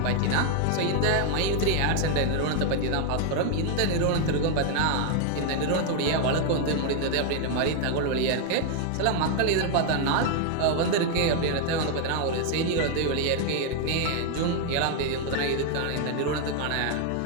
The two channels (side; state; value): both; different; correlation 0.00